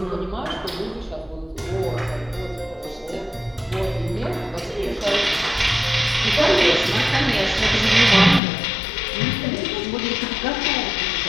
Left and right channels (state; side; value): drops out; right; at 8.4 s